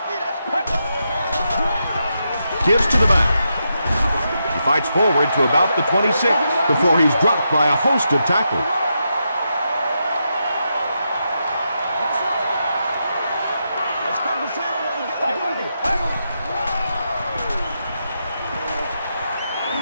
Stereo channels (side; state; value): both; inverted; correlation -0.84